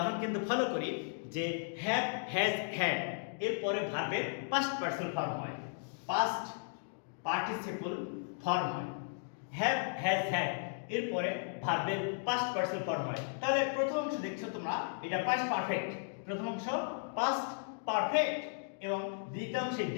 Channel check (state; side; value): silent; right; digital silence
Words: কিন্তু ফলো করি যে হ্যাভ, হ্যাজ, হ্যাড এরপরে ভার্বের পাস্ট পার্সন ফর্ম হয়, পাস্ট পার্টিসিপল ফর্ম হয়। হ্যাভ, হ্যাজ, হ্যাড এরপরে ভার্বের পাস্ট পার্সন ফর্ম হয়। তাহলে প্রথম অংশ দেখছো তোমরা, এটা পাস্ট পারফেক্ট, প্রথম অংশ পাস্ট পারফেক্ট এবং দ্বিতীয়াংশ